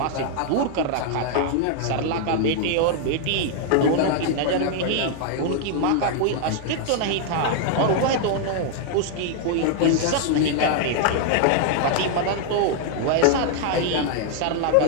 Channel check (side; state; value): both; different; correlation 0.00